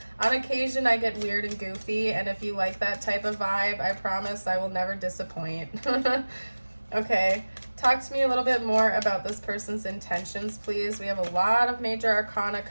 On occasion, I get weird and goofy, and if you like that type of vibe, I promise I will never disappoint. Okay, talk to me a little bit more about this person's intentions, please. We have a lot of major arcana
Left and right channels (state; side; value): inverted; both; correlation -1.00